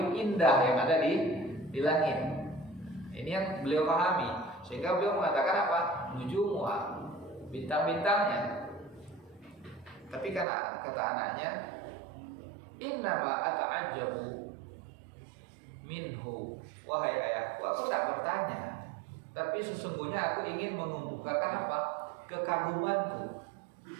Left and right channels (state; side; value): drops out; left; at 10.5 s